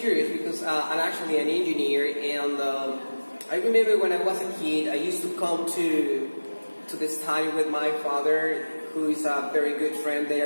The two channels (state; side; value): inverted; both; correlation -1.00